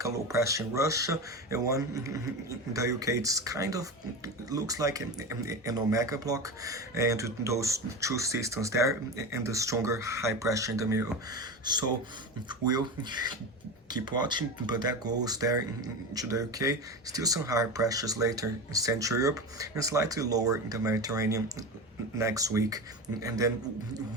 a low pressure in Russia and one in the UK. It's kind of looks like an omega block, and those two systems there and the stronger high pressure in the middle. So we'll keep watching, but that goes there into the UK. Still some higher pressures later in Central Europe and slightly lower in the Mediterranean next week, and then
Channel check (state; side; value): normal; both; correlation 0.24